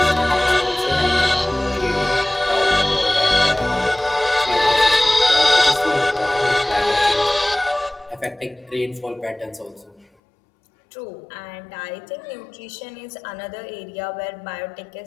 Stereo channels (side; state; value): right; drops out; at 10.1 s